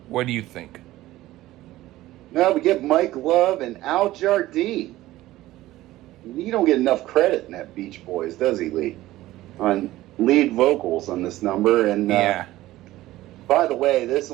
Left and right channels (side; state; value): left; quieter; 16.2 dB